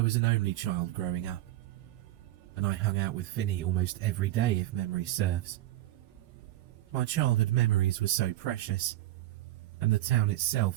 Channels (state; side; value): quieter; left; 14.8 dB